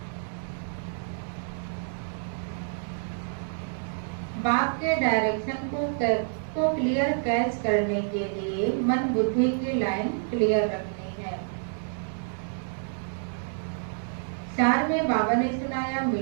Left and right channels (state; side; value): silent; left; 59 dB below the other